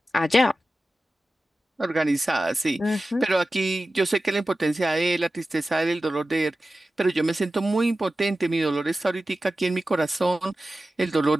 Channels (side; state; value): both; normal; correlation 0.94